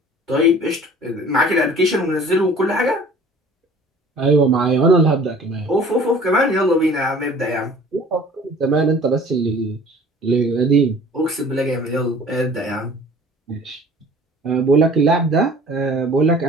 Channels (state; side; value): normal; both; correlation 0.48